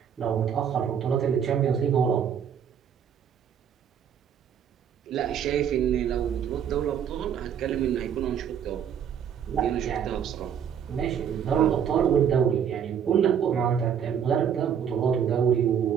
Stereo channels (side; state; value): left; quieter; 8.3 dB